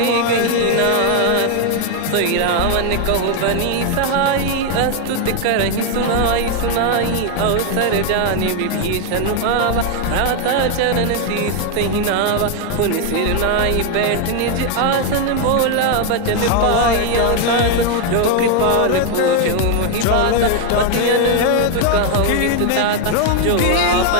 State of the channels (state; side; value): different; both; correlation 0.01